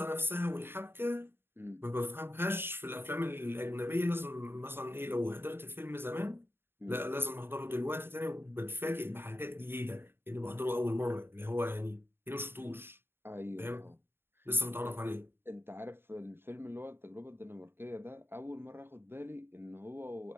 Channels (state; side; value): late; left; 0.11 ms